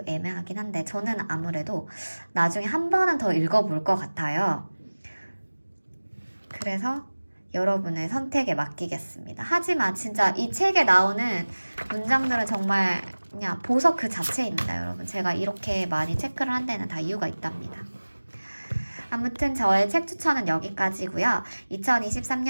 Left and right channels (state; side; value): inverted; both; correlation -1.00